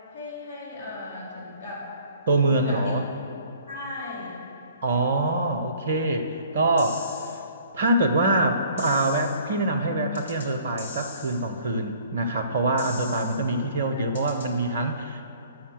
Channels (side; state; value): both; inverted; correlation -0.55